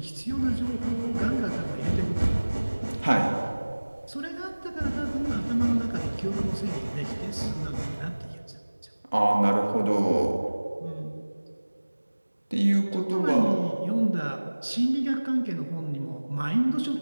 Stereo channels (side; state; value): both; inverted; correlation -1.00